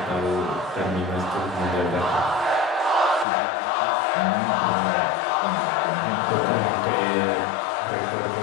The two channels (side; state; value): right; drops out; at 3.2 s